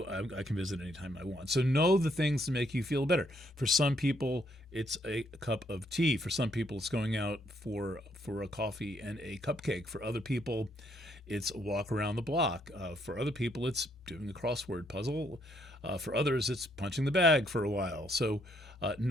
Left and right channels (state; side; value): normal; both; correlation 0.72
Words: I can visit anytime I want. So know the things that make you feel better. For some people, it's a cup of tea. For some people, it's going out for a coffee and a cupcake. For other people, it's a walk around the block. For other people, it's doing a crossword puzzle. For others, it's punching the bag for a while. So